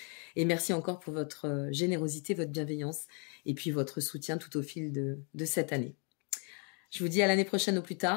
Et merci encore pour votre générosité, votre bienveillance et puis votre soutien tout au fil de cette année. Je vous dis à l'année prochaine au plus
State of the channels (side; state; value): right; quieter; 38.0 dB